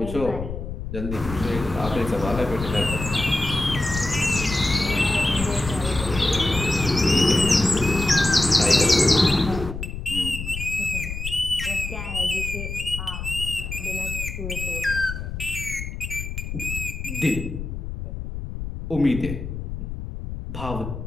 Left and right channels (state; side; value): noise; left; rumble, 7 dB below the sound